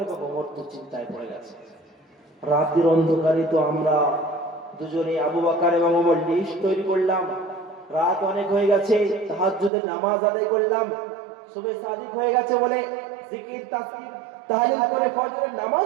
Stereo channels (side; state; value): left; drops out; at 9.7 s